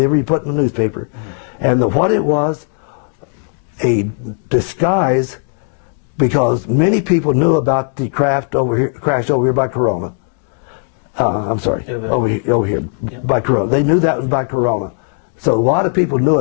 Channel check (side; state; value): right; silent; 55 dB below the other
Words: he put in the newspaper, and what it was, a disguise, because many people knew about the craft crash over here by Corona. I'm sorry, over here Yep. by Corona. They knew that was by Corona. So a lot of people knew